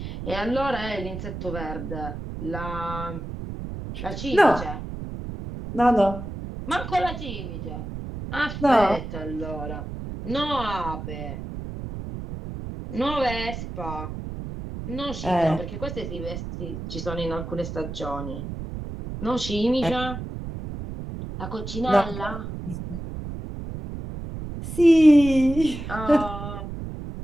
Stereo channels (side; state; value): right; noise; rumble, 8 dB below the sound